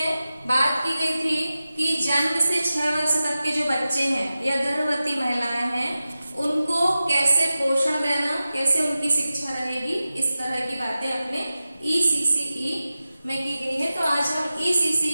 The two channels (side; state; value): both; inverted; correlation -0.94